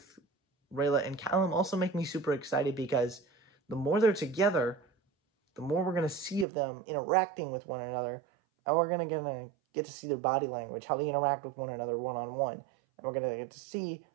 Rayla and Callum also make me super excited, because the more they're together, the more we're going to see of them interacting with one another, and we're going to get to see their body language, how they interact with one another one-on-one, and we're going to get to see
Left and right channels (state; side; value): drops out; left; at 6.5 s